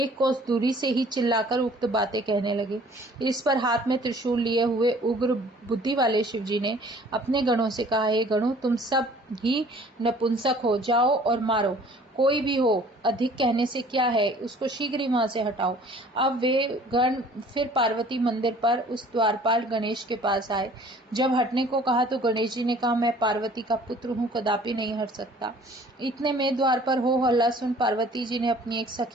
कोस दूरी से ही चिल्लाकर उक्त बातें कहने लगे। इस पर हाथ में त्रिशूल लिए हुए उग्र बुद्धि वाले शिव जी ने अपने गणों से कहा, हे गणों, तुम सब ही नपुंसक हो, जाओ और मारो, कोई भी हो, अधिक कहने से क्या है, उसको शीघ्र ही वहां से हटाओ। अब वे गण फिर पार्वती मंदिर पर उस द्वारपाल गणेश के पास आए। जब हटने को कहा तो गणेश जी ने कहा, मैं पार्वती का पुत्र हूँ, कदापि नहीं हट सकता। इतने में द्वार पर हो हल्ला सुन पार्वती जी ने अपनी एक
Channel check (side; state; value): both; normal; correlation 0.52